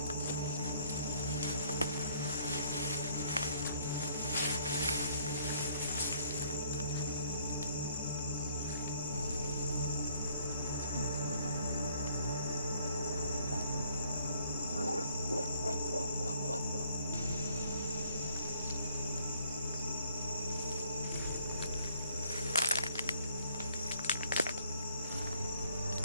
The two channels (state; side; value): inverted; both; correlation -0.62